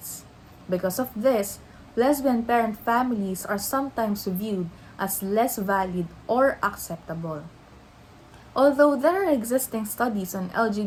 Because of this, lesbian parent families are sometimes viewed as less valid or acceptable. Although there are existing studies on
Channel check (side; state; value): both; identical; correlation 1.00